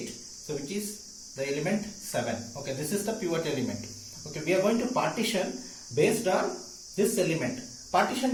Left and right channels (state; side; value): identical; both; correlation 1.00